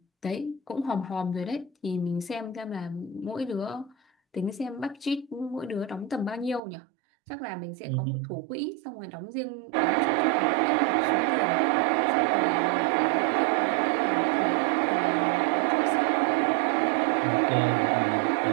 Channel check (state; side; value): drops out; left; at 6.6 s